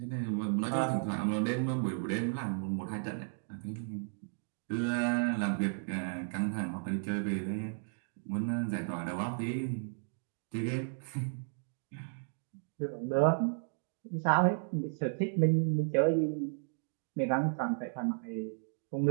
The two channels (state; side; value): silent; left; digital silence